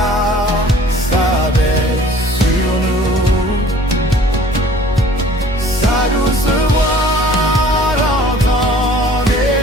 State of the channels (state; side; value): normal; both; correlation 0.51